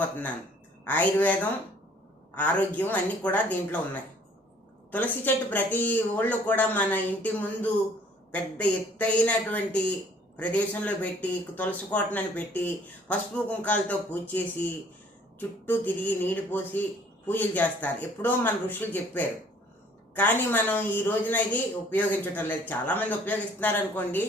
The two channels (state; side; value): normal; both; correlation 0.57